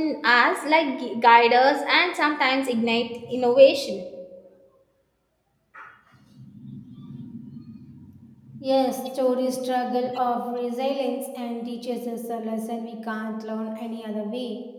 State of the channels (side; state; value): both; identical; correlation 1.00